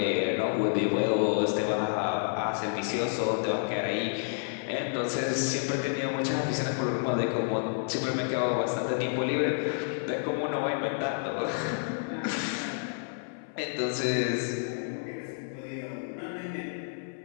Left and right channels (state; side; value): silent; right; 58 dB below the other